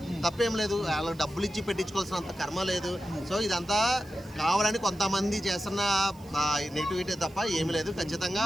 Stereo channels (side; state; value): right; noise; hiss, 26 dB below the sound